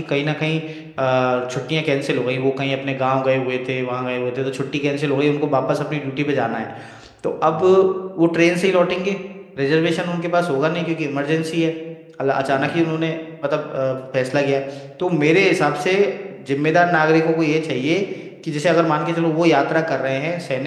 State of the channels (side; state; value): both; identical; correlation 1.00